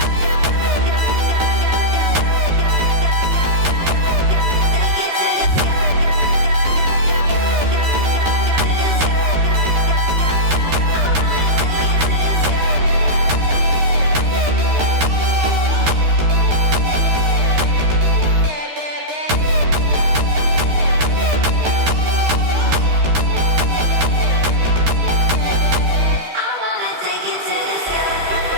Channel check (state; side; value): late; left; 13 ms